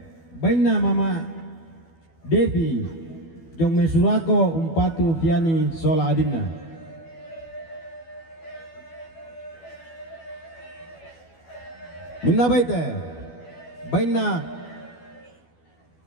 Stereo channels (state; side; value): late; right; 12 ms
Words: Baina Mama Devi Jong Mesurako Umpatu Piani sola adinna. Minna baite. Baina